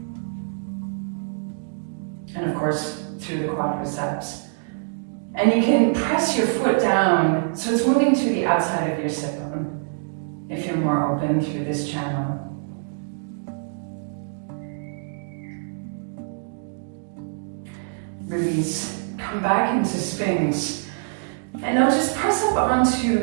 And of course, through the quadriceps. And you can press your foot down so it's moving to the outside of your sit bone if you're more open through this channel. Release, come back into Sphinx. And now just press up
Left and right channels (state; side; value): silent; left; digital silence